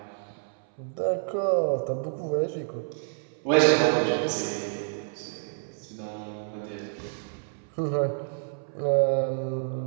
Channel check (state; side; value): silent; left; 59 dB below the other